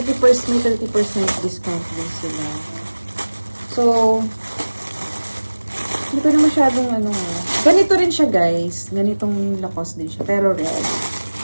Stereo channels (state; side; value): inverted; both; correlation -1.00